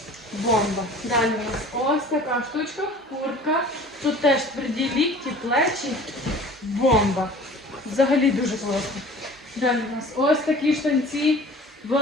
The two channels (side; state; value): both; normal; correlation 0.44